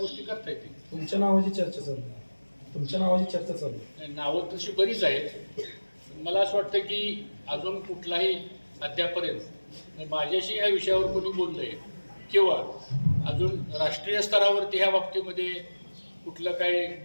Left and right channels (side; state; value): both; inverted; correlation -1.00